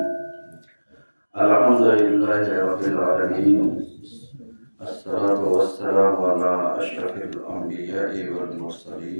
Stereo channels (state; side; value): inverted; both; correlation -1.00